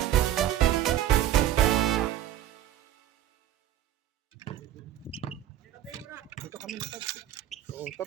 Dito kami na taxi. Oh,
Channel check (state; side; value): quieter; left; 12.2 dB